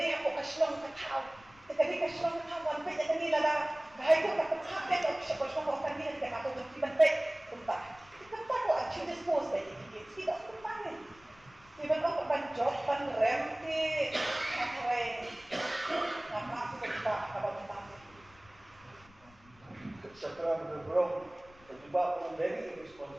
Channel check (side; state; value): left; noise; rumble, 27 dB below the sound